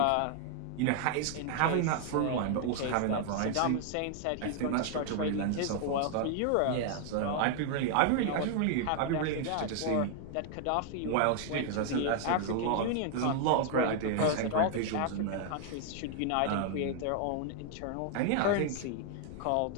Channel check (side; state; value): both; different; correlation 0.00